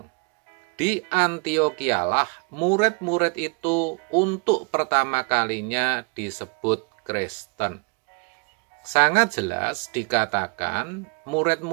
Di Antiokhia-lah murid-murid itu untuk pertama kalinya disebut Kristen. Sangat jelas dikatakan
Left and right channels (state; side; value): quieter; left; 35.0 dB